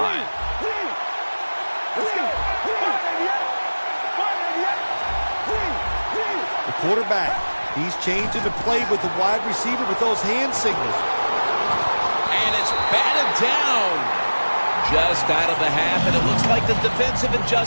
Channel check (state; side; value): inverted; both; correlation -1.00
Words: The quarterback, he's changing the play with the wide receiver with those hand signals. And it's batted down. Just out of the half, and it looks like the defensive